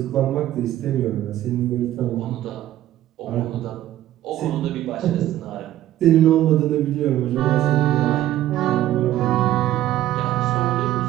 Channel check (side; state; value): left; quieter; 13.5 dB